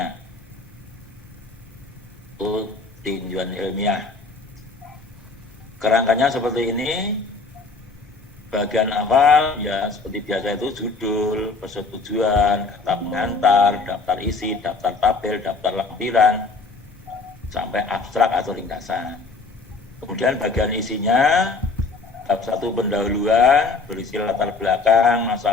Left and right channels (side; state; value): right; quieter; 3.9 dB